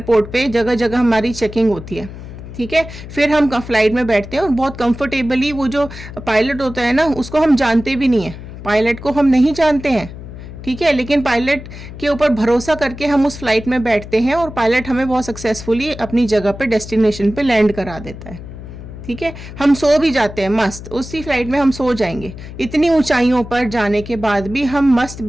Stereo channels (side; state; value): left; noise; hum, 13 dB below the sound